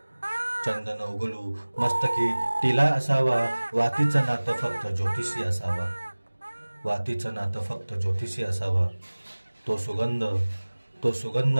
चंदन उगलू मस्तकी टिला असावा. वातीचं नातं फक्त ज्योतिषी असावा, वातीचं नातं फक्त ज्योतिषी असावा. तो सुगंध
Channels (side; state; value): both; inverted; correlation -1.00